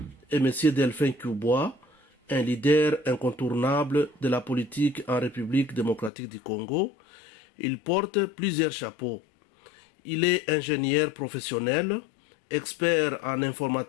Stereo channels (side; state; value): right; drops out; at 6.1 s